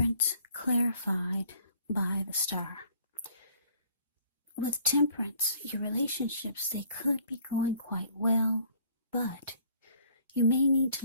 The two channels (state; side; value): inverted; both; correlation -0.57